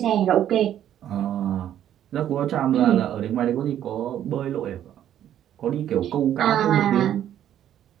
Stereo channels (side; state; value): left; quieter; 10.9 dB